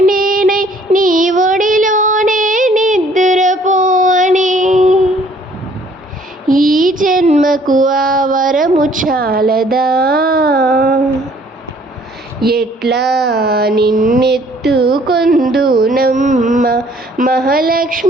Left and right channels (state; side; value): normal; both; correlation 0.59